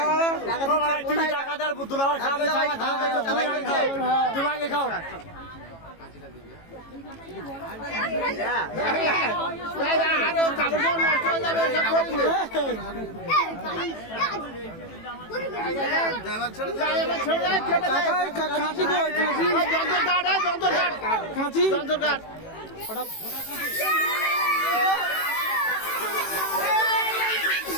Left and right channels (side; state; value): right; late; 18 ms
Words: তোমাকে খাও কাঁচি